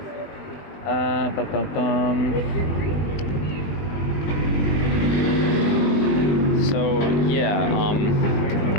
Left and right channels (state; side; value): late; right; 20 ms